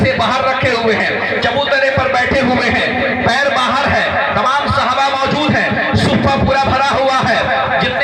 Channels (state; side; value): identical; both; correlation 1.00